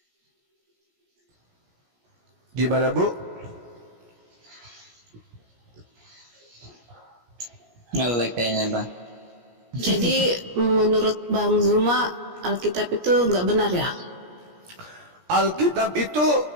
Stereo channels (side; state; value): left; late; 17 ms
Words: Gimana, Bu? Ngelek kayaknya, Bang. Jadi menurut Bang Zuma Alkitab itu nggak benar ya? Alkitab itu